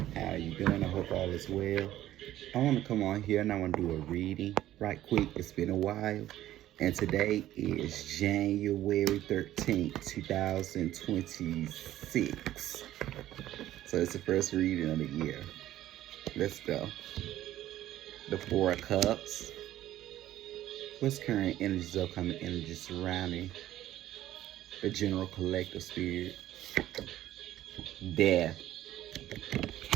How you doing? I hope all is well. I want to come on here and I want to do a reading right quick. It's been a while. And today is January 13th, 2026. So it's the first reading of the year. Let's go. The Four of Cups. What's current energies, upcoming energies surrounding the general collective spirit? Death.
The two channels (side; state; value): left; quieter; 13.6 dB